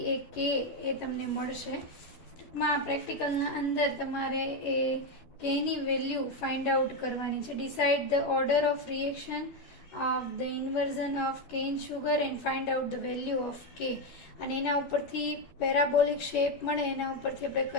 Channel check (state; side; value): late; right; 12 ms